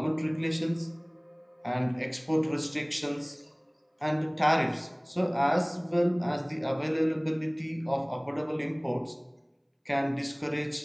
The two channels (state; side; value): identical; both; correlation 1.00